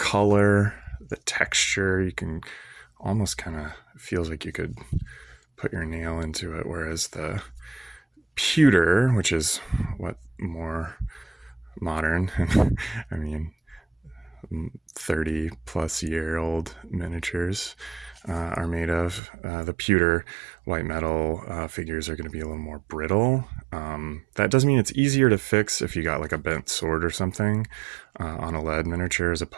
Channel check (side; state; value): left; drops out; at 19.2 s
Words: the texture. You can almost kind of feels like you could put your nail into it, whereas the pewter, which is what more modern, I mean 30 plus year old miniatures are made of, the pewter white metal figures are going to be a little more brittle. That doesn't mean it's easier to fix if you got like a bent sword or something on a lead miniature, as